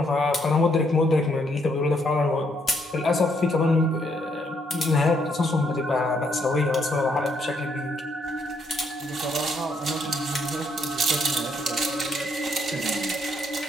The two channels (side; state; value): both; normal; correlation 0.72